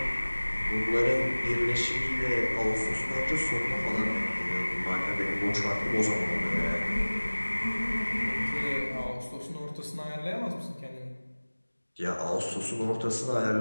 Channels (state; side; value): inverted; both; correlation -1.00